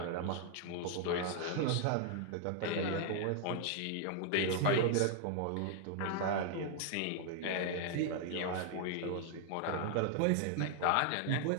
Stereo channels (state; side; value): different; both; correlation 0.00